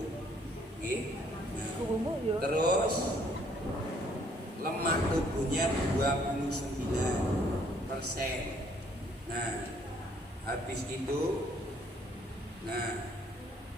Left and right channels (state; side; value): normal; both; correlation 0.64